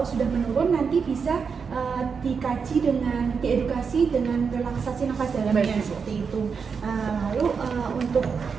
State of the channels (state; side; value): quieter; left; 5.8 dB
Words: sudah menurun nanti bisa dikaji dengan diedukasi dengan relaksasi nafas dalamnya seperti itu. Lalu untuk